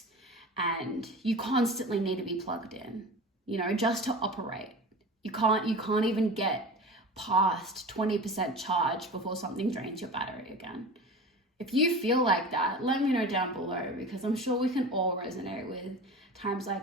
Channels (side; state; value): both; normal; correlation 0.34